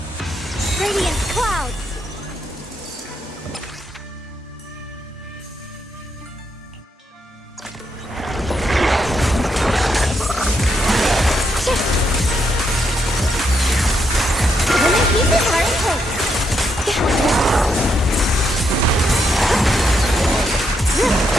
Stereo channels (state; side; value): normal; both; correlation 0.79